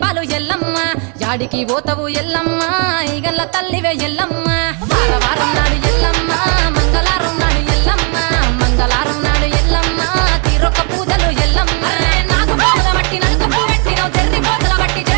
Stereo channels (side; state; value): left; quieter; 37.3 dB